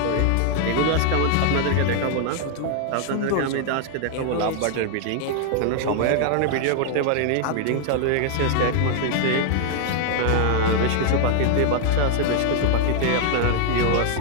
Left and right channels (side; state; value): both; different; correlation 0.00